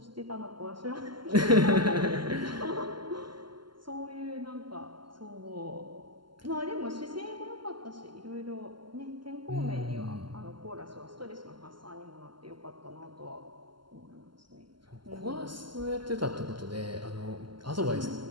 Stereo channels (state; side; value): late; left; 0.72 ms